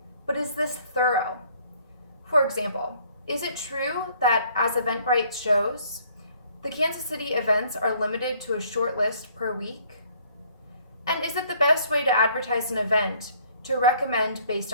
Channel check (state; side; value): inverted; both; correlation -0.61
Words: But is this thorough? For example, is it true that, as Eventbrite shows, the Kansas City events are limited to a short list per week? And is it the best way to advertise an event to recommend based